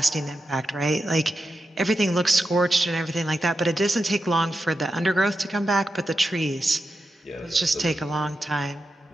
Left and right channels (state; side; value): normal; both; correlation 0.89